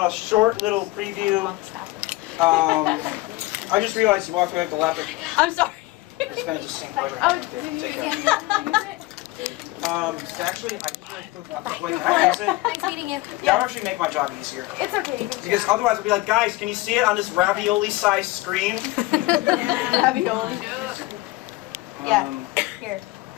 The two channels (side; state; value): right; quieter; 20.0 dB